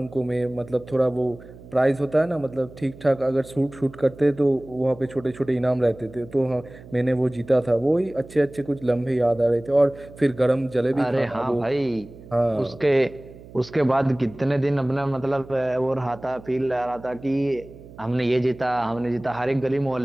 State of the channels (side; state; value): right; noise; hum, 19 dB below the sound